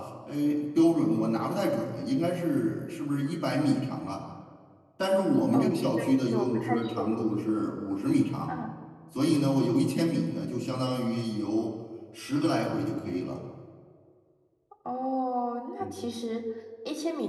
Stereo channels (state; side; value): identical; both; correlation 1.00